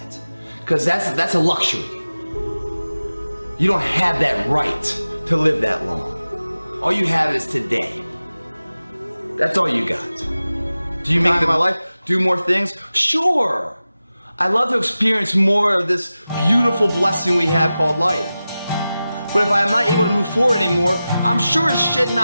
Because that's a luxury. You don't have that right to live that long. All you have is today. That's all you got. Do you make my life do more things? Sure. I love to experience more of this beautiful blessing we have called life. But if I'm not able to move forward anymore, I'm sure as shit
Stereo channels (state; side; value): inverted; both; correlation -0.95